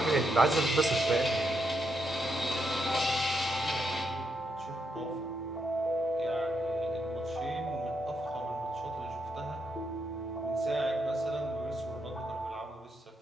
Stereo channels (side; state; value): both; normal; correlation 0.80